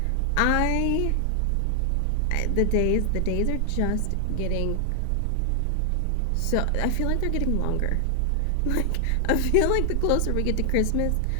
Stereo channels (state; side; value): different; both; correlation 0.00